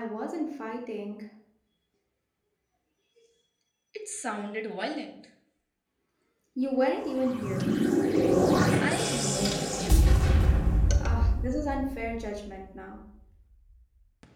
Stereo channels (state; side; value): identical; both; correlation 1.00